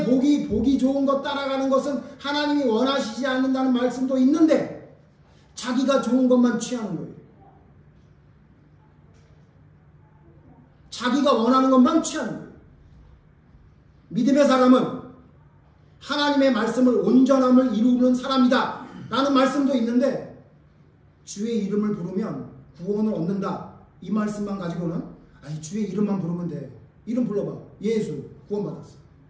보기 좋은 것 따라가는 것은 하나님이 원하시지 않는다는 말씀도 있는데 자기가 좋은 것만 취하는 거예요. 자기가 원하는 것만 취하는 거예요. 믿음의 사람은 하나님의 말씀을 온전함을 이루는 사람이다 라는 말씀도 있는데 주의 이름을 부르면 구원을 얻는다 이 말씀만 가지고는 아니 주의 이름만 부르면 돼. 이름 불러봐. 예수 구원받았어.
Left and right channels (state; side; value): identical; both; correlation 1.00